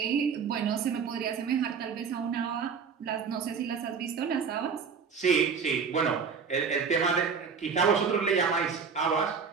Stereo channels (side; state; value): left; quieter; 6.0 dB